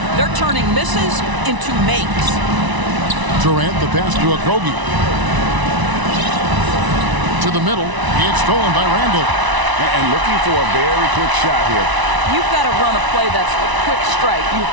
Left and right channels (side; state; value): left; late; 1.0 ms